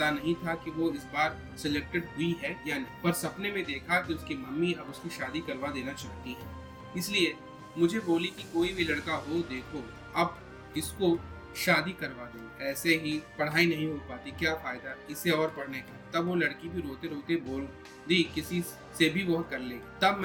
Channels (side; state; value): both; identical; correlation 1.00